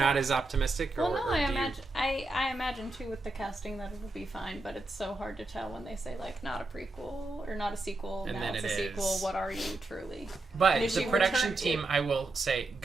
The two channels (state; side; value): quieter; left; 3.0 dB